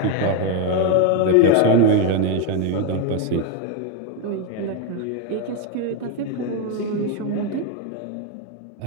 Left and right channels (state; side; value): different; both; correlation 0.02